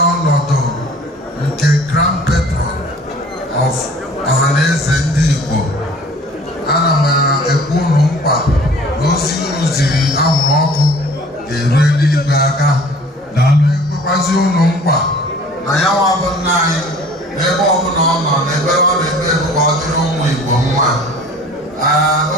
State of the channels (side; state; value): both; normal; correlation 0.48